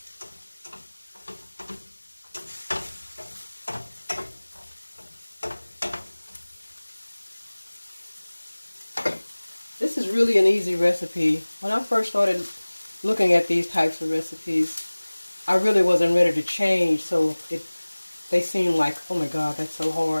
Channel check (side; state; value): both; inverted; correlation -1.00